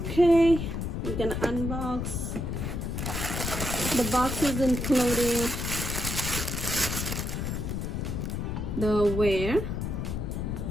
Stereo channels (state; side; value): noise; left; rumble, 3 dB below the sound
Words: we can unbox. The box is including the wear,